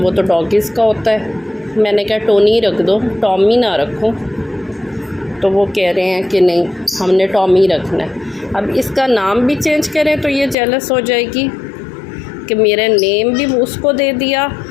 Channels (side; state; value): right; drops out; at 10.6 s